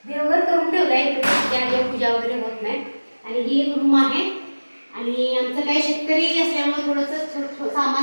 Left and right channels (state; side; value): inverted; both; correlation -1.00